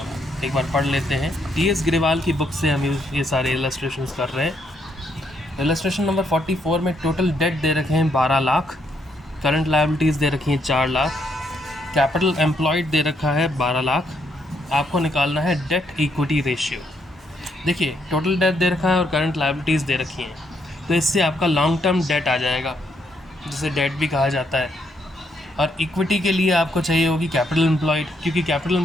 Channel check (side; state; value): both; normal; correlation 0.74